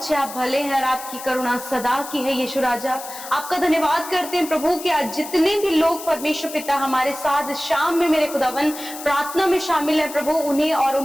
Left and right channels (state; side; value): noise; left; hiss, 12 dB below the sound